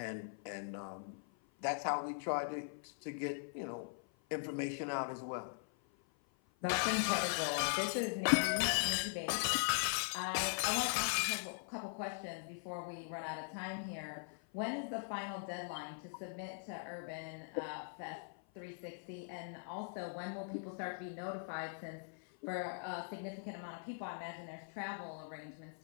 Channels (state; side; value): silent; right; 50 dB below the other